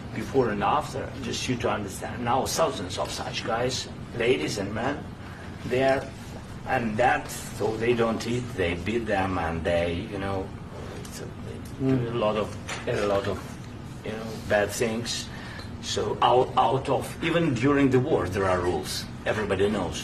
before and after, just you to understand. Now thousands of such guys, ladies and men, there, and that, so they don't eat, they beat them, and they, do a lot of bad things. So out of, even during the war, there are rules. Everybody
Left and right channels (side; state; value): both; identical; correlation 1.00